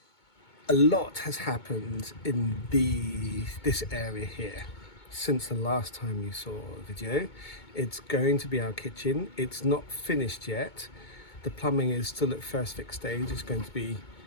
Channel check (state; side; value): late; right; 2.2 ms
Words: a lot has happened in this area here since the last time you saw the video. It's going to be our kitchen. It's not finished yet. The plumbing is still at first fix stage. It's going to be